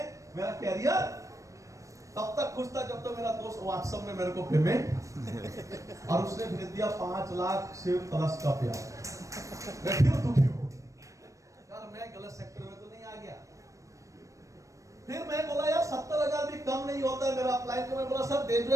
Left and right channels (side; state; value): left; late; 0.16 ms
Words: मेरा कैरियर, तब तक खुश था जब तो मेरा दोस्त व्हाट्सएप में मेरे को पेमेंट और उसने भेज दिया 5 लाख से प्लस का पेआउट। मैं फिर दुखी हो यार, मैं गलत सेक्टर में तो नहीं आ गया। फिर मैं बोला यार 70,000 भी कम नहीं होता है मेरा अपलाइन को। मैं बोला सर